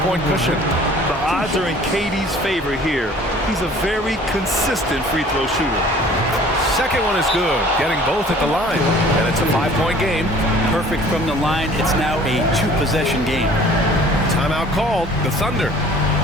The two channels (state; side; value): normal; both; correlation 0.50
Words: cushion. The odds are in KD's favor here. He's a very consistent free throw shooter. Second one is good, getting both at the line, and it's a 5-point game. Perfect from the line. It's now a 2-possession game. Timeout called, the Thunder.